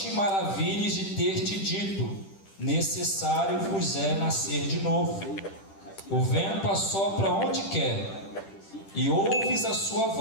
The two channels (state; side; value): late; right; 10 ms